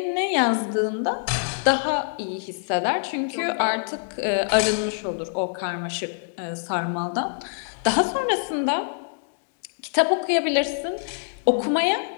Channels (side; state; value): right; silent; digital silence